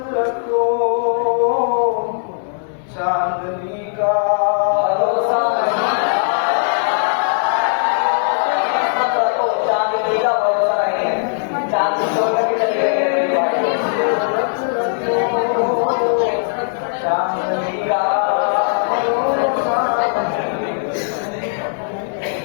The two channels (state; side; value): silent; right; digital silence